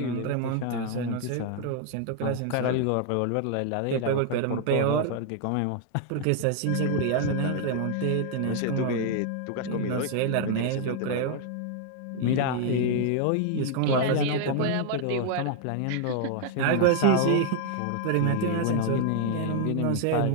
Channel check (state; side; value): different; both; correlation 0.00